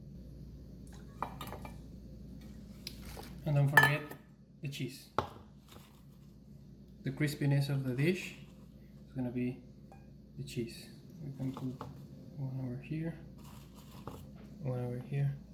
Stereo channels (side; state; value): both; identical; correlation 1.00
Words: And don't forget the cheese. The crispiness of the dish is gonna be the cheese. We can put one over here, one over here.